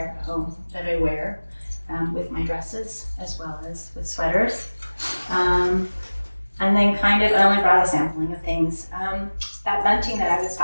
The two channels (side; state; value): both; inverted; correlation -1.00